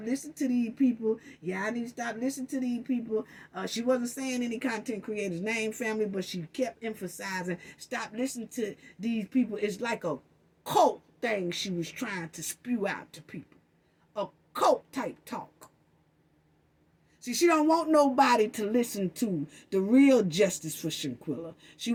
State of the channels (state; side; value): identical; both; correlation 1.00